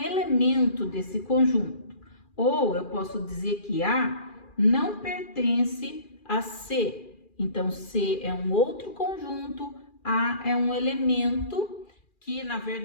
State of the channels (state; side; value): late; right; 2.4 ms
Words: desse conjunto. Ou eu posso dizer que A não pertence a C. Então, C é um outro conjunto, A é um elemento que, na